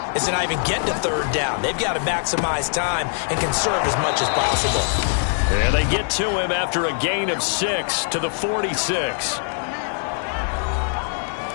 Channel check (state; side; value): silent; right; digital silence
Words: is to not even get to third down. They've got to maximize time and conserve as much as possible. And they get to him after a gain of 6 to the 46.